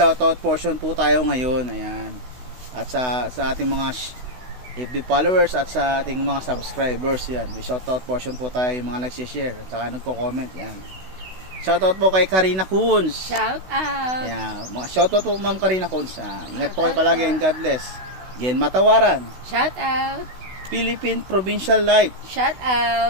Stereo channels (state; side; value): late; left; 16 ms